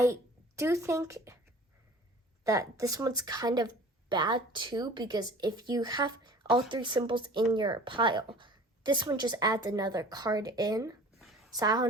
do think that this one's kind of bad too, because if you have all 3 symbols in your pile. This one just adds another card in. So I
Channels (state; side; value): normal; both; correlation 0.45